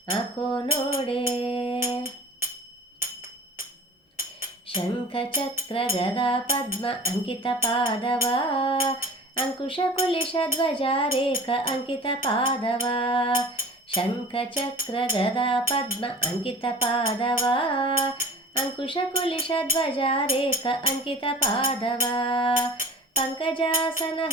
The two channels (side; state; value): both; normal; correlation 0.40